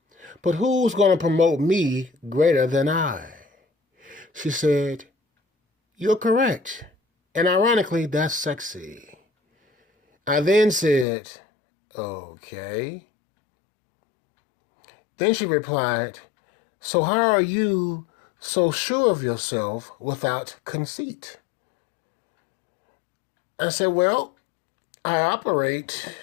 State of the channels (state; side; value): drops out; right; at 11.1 s